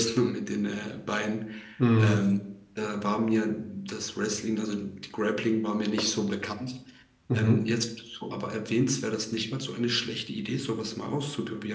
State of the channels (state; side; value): identical; both; correlation 1.00